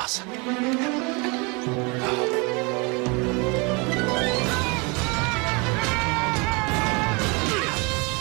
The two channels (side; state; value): left; quieter; 29.8 dB